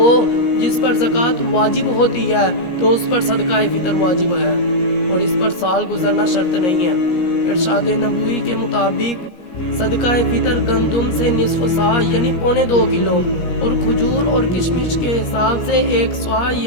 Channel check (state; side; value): late; right; 17 ms